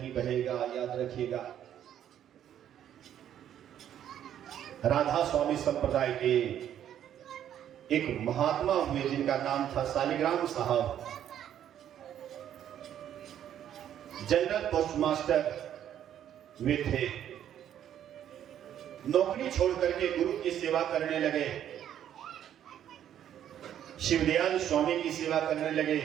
बहेगा, याद रखिएगा। राधा स्वामी संप्रदाय के एक महात्मा हुए जिनका नाम था शालिग्राम साहब। जनरल पोस्टमास्टर वे थे। नौकरी छोड़ करके गुरु की सेवा करने लगे, शिवदयाल स्वामी की सेवा करने लगे।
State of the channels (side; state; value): left; quieter; 10.4 dB